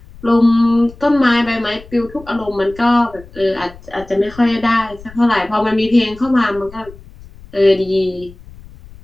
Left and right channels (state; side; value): noise; left; rumble, 20 dB below the sound